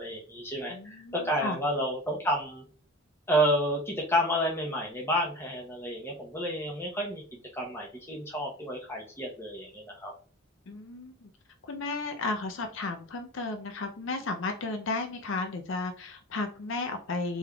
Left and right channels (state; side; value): normal; both; correlation 0.31